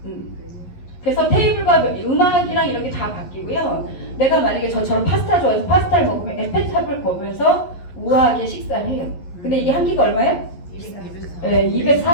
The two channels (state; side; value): late; right; 11 ms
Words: 그래서 테이블과 음악이랑 이런 게 다 바뀌고요. 내가 만약에 저처럼 파스타 좋아해서 파스타를 먹으면 에펠탑을 보면서 우아하게 식사를 해요. 근데 이게 한 끼가 얼마예요? 네,